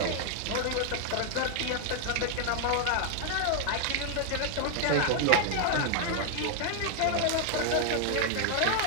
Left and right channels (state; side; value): different; both; correlation 0.00